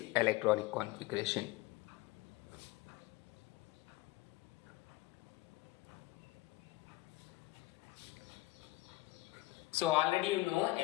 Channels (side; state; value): right; quieter; 19.5 dB